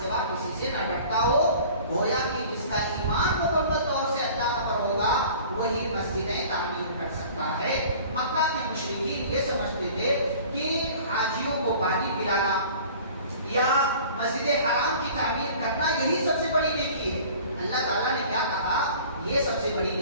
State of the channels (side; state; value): both; inverted; correlation -0.46